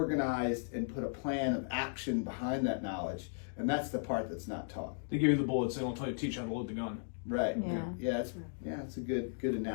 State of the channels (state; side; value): silent; right; digital silence